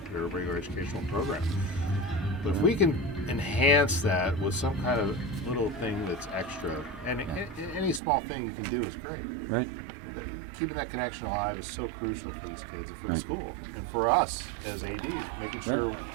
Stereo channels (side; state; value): left; drops out; at 8.0 s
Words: their regular educational program. But if we can enhance that with some kind of little thing that's extra, and any small thing you can do is great. Right. Keeping that connection alive is so crucial for these kids and for the school and for us as ADs, making sure